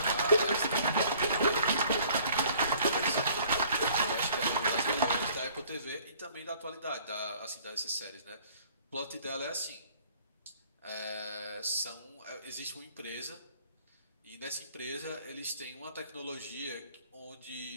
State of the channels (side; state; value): both; inverted; correlation -0.55